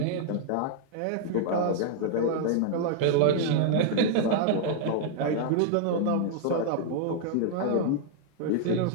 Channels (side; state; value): both; different; correlation -0.01